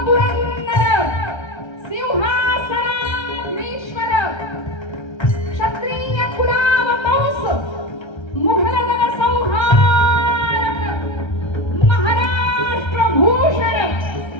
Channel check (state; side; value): late; right; 1.3 ms